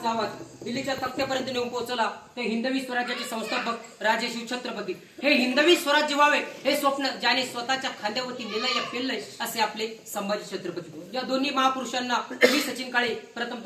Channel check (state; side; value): identical; both; correlation 1.00